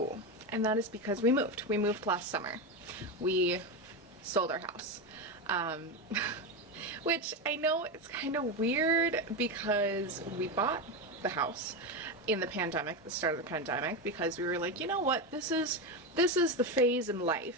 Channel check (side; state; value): both; normal; correlation 0.15